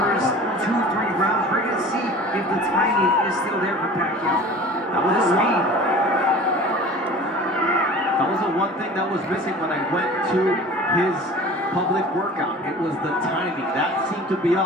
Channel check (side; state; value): both; normal; correlation 0.41